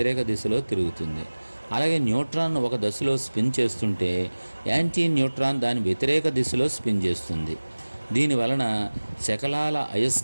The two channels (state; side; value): inverted; both; correlation -1.00